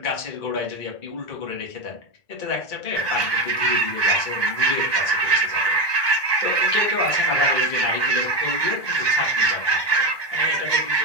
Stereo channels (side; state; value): right; late; 1.2 ms